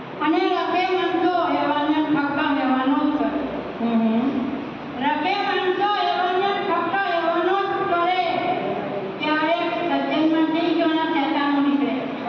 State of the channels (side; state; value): both; identical; correlation 1.00